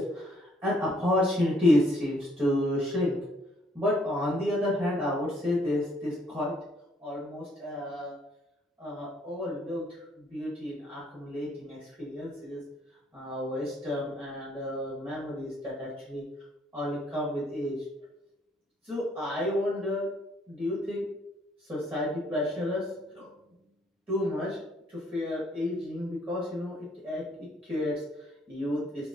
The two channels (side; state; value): both; normal; correlation 0.66